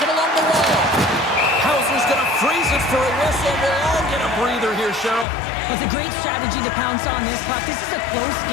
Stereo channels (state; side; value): drops out; right; at 5.2 s